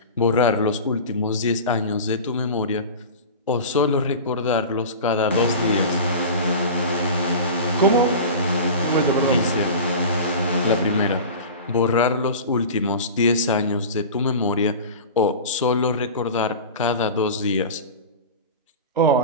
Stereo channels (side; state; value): both; inverted; correlation -0.32